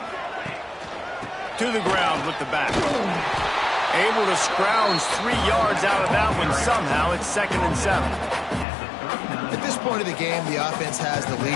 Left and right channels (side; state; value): right; drops out; at 8.7 s